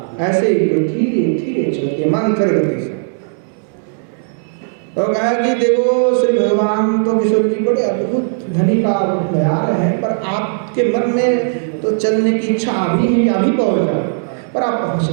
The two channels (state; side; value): silent; left; digital silence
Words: ऐसे ही धीरे धीरे चलते मंत्र गति से। तो कहा कि देखो श्री भगवान तो किशोर जी बड़े अद्भुत धनी का बया रहे हैं, पर आपके मन में तो चलने की इच्छा अभी है कि अभी पहुंच जाओ, पर आप पहुंच